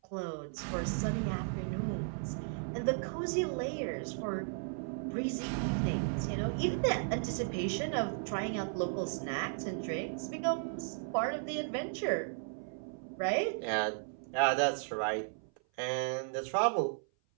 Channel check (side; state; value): left; silent; 54 dB below the other